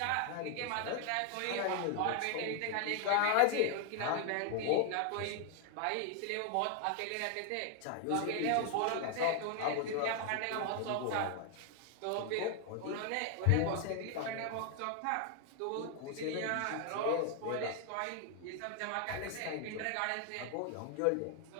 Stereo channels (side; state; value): both; different; correlation 0.00